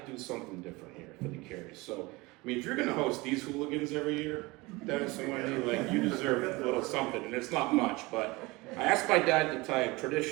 do something different here for the Carries? So, I mean, if you're gonna host these hooligans every year, Dennis and Wendy, like, you deserve a little something, and it's not much, but I asked my dad to tie a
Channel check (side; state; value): left; quieter; 23.2 dB